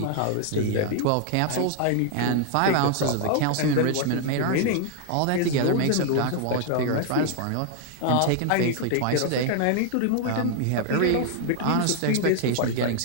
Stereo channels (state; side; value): different; both; correlation 0.00